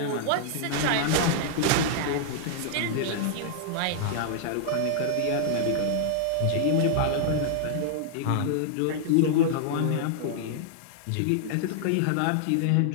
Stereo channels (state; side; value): different; both; correlation -0.01